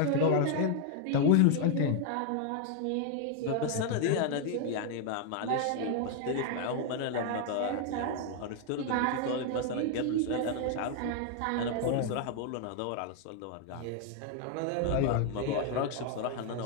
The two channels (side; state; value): both; different; correlation 0.00